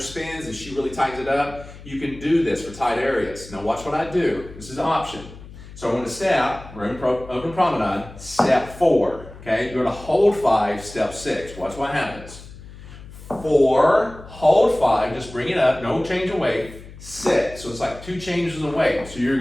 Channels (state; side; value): noise; left; hum, 17 dB below the sound